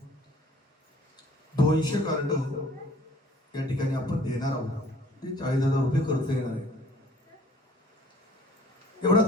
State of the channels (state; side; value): normal; both; correlation 0.54